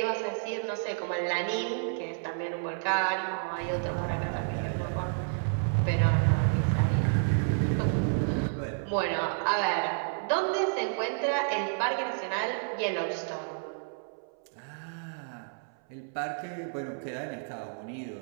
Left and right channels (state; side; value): silent; left; 58 dB below the other